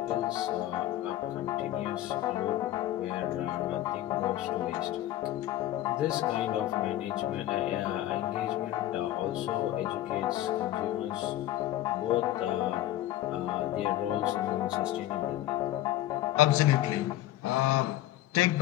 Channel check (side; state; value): right; quieter; 14.0 dB